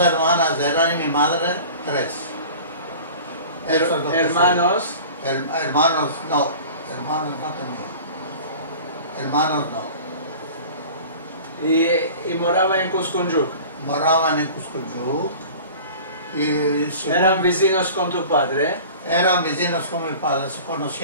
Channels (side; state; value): both; inverted; correlation -0.41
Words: hermanas eran y mi madre, tres. Eso es lo que Hermanos. sé. Hermanos no tenía. Hermanos no. Y moraba en Cuscuyuc. Moraban en Cuscuyuc y Eran vecinos con tu padre eran vecinos con mi padre, se